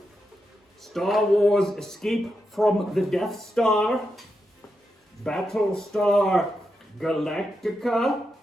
Star Wars Escape from the Death Star, Battlestar Galactica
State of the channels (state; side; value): normal; both; correlation 0.86